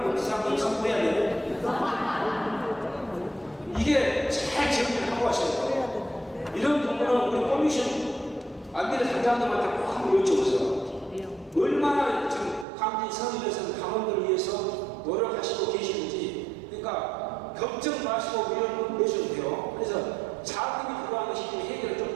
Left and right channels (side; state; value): left; drops out; at 12.7 s